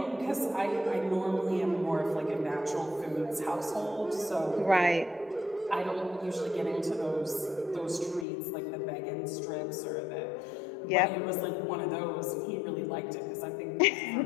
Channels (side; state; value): right; drops out; at 8.2 s